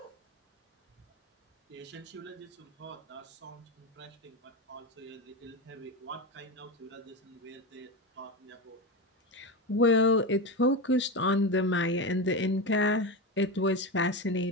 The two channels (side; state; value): both; normal; correlation 0.17